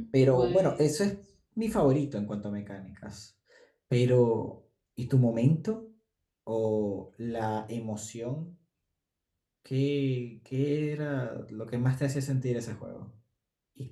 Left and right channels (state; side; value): identical; both; correlation 1.00